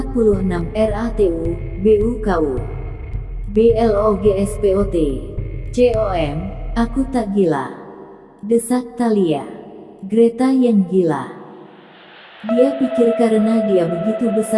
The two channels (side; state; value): both; identical; correlation 1.00